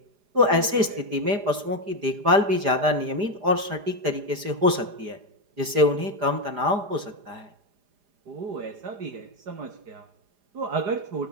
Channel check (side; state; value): left; late; 4.9 ms